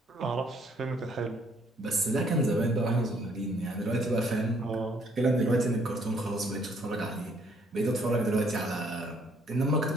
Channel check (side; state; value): both; normal; correlation 0.65